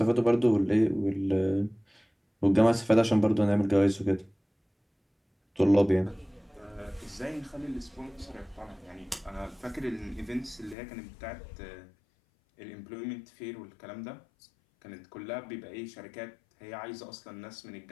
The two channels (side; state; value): right; drops out; at 10.8 s